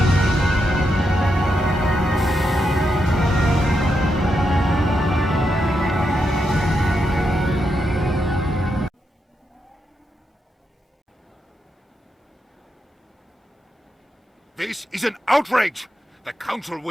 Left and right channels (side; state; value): both; normal; correlation 0.84